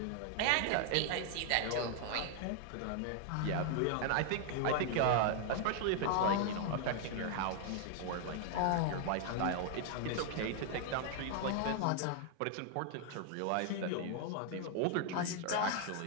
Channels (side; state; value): both; different; correlation 0.00